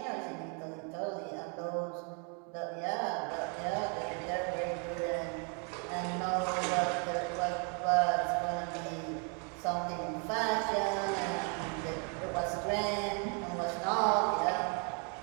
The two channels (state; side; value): quieter; left; 37.6 dB